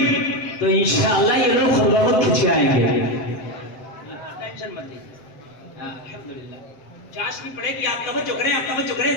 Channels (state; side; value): late; right; 7.7 ms